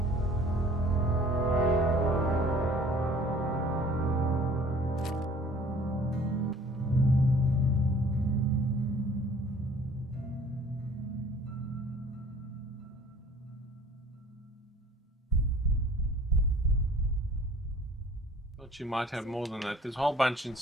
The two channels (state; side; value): normal; both; correlation 0.52